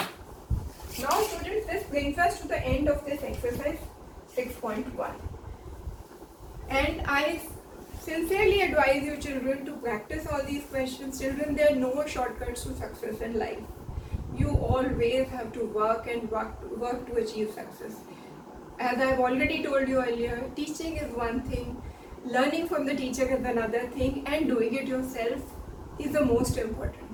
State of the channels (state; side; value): identical; both; correlation 1.00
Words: Now, students, this brings us to the end of this exercise 6.1. And I sincerely advise you, children, to practice all these questions. Children, there are no shortcuts to success in life. You always have to work and work to achieve success. As I have already told you earlier, teaching is one thing, learning from the teacher is another thing, and doing it yourself is the most